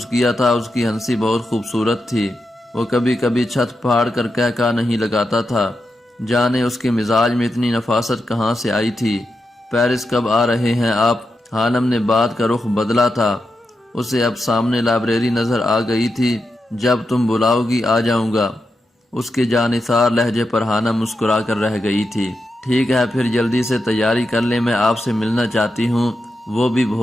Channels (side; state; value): both; normal; correlation 0.87